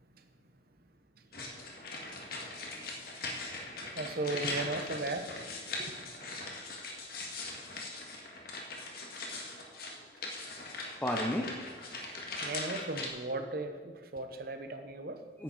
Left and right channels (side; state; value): both; normal; correlation 0.19